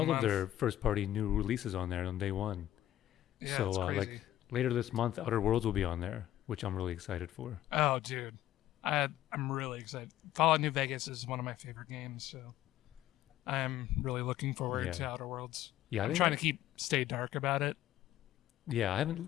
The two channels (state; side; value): quieter; right; 13.1 dB